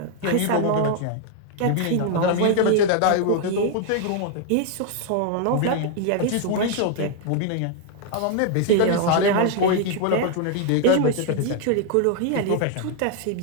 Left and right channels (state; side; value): different; both; correlation 0.00